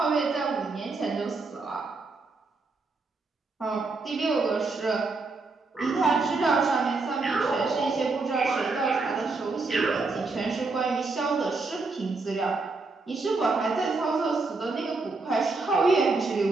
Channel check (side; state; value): left; quieter; 3.8 dB